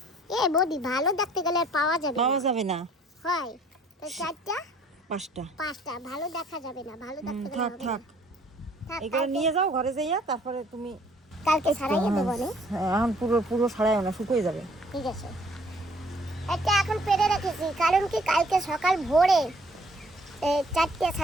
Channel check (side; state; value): both; normal; correlation 0.59